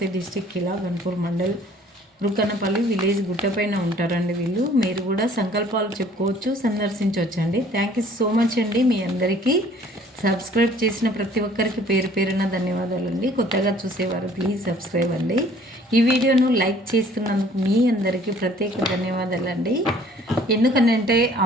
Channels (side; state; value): both; normal; correlation 0.55